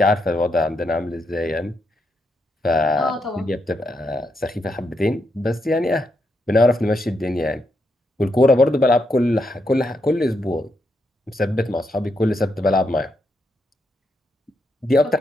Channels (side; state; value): both; normal; correlation 0.81